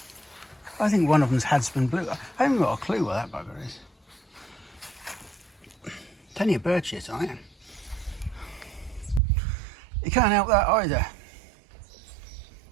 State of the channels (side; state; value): left; drops out; at 9.2 s